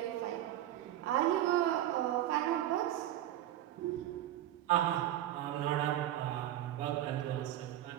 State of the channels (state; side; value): quieter; left; 12.9 dB